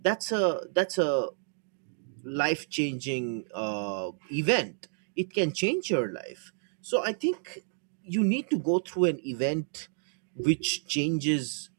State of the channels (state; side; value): silent; left; digital silence